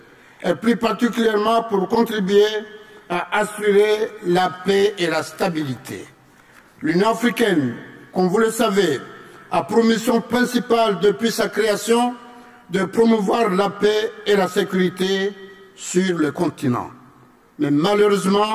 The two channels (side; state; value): both; identical; correlation 1.00